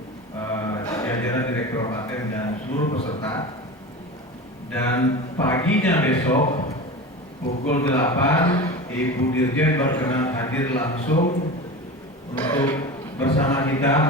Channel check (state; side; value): normal; both; correlation 0.29